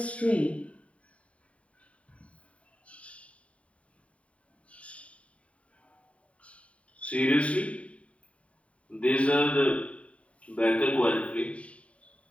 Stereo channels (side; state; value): right; late; 0.064 ms